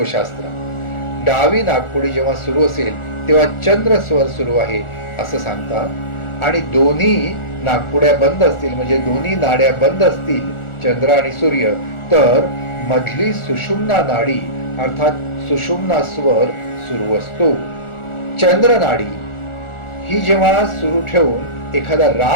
डावी नाकपुडी जेव्हा सुरू असेल तेव्हा चंद्र स्वर सुरू आहे असं सांगतात. आणि दोन्ही नाकपुड्या बंद असतील म्हणजे दोन्ही नाड्या बंद असतील, चंद्र आणि सूर्य, तर मधली सुषुम्ना नाडी अर्थात सुषुम्ना स्वर सुरू असतो. चंद्र नाडी ही जेव्हा सुरू ठेवून एखादा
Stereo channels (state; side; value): late; right; 1.4 ms